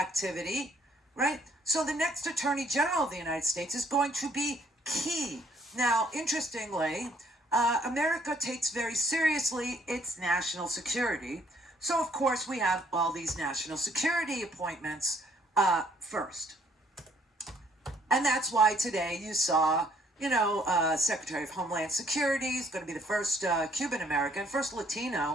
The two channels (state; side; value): normal; both; correlation 0.64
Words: right? So the next attorney general of the United States is going to be key. Now, interestingly, America takes very seriously its national security. So, of course, we have all these national security appointments first. And that's why today you saw, Secretary of Homeland Security is going to be the first Cuban-American, first